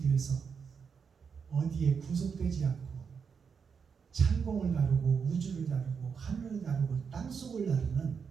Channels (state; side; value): quieter; left; 6.2 dB